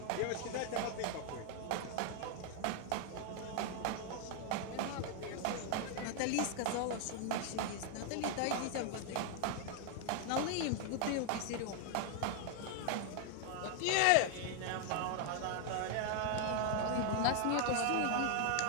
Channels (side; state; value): both; different; correlation 0.00